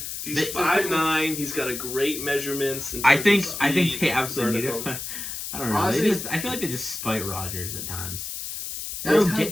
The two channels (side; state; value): left; noise; hiss, 6 dB below the sound